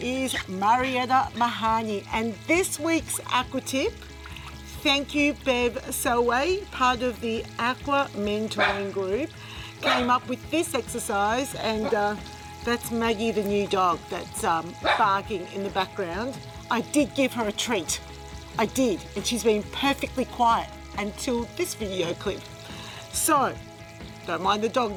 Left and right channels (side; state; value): both; identical; correlation 1.00